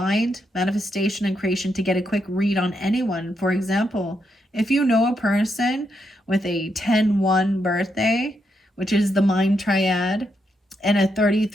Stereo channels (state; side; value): normal; both; correlation 0.80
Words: manifestation, and creation, to get a quick read on anyone. For example, if you know a person with a 10-1 birthday, which is the mind triad, and a